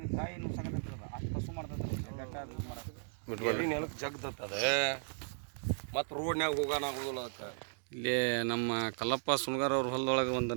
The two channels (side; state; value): left; silent; digital silence